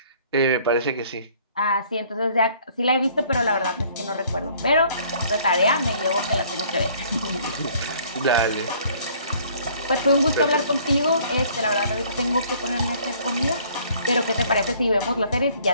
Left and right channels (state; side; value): inverted; both; correlation -0.58